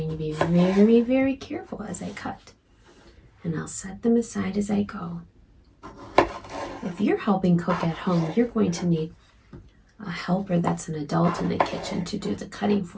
to be very, very careful as I cut. And I'll set them aside as I go. If you're helping cook at home, you're going to need a helper that's an adult in the kitchen to do the cutting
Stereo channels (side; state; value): both; identical; correlation 1.00